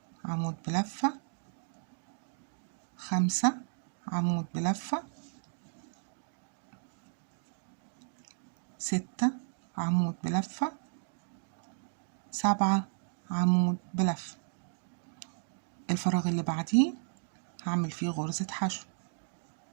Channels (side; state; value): left; silent; digital silence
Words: عمود بلفة، 5 عمود بلفة، 6 عمود بلفة، 7 عمود بلفة. الفراغ اللي بعديه هعمل فيه غرزة حشو